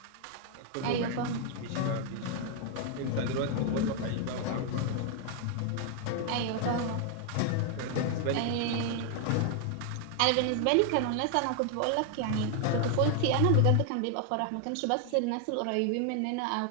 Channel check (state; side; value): different; both; correlation 0.00